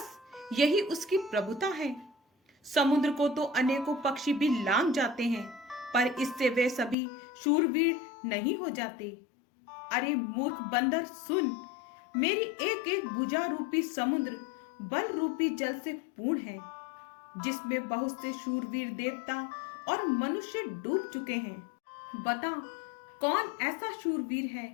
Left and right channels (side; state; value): right; drops out; at 7.0 s